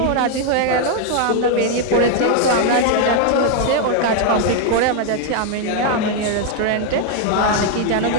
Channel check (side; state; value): both; different; correlation 0.00